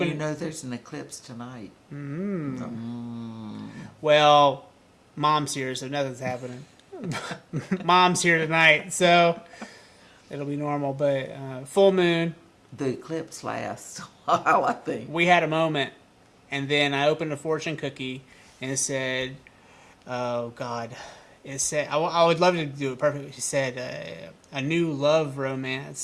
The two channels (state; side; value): identical; both; correlation 1.00